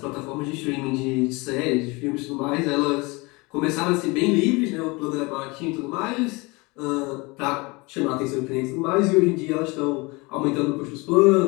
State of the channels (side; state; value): right; quieter; 25.6 dB